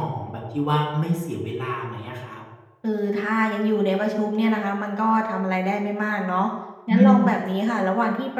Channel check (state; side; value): identical; both; correlation 1.00